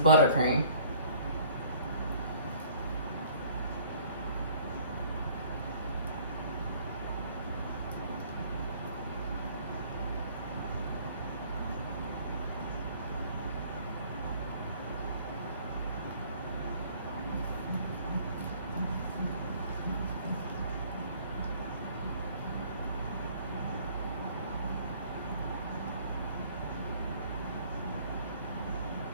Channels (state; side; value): inverted; both; correlation -0.56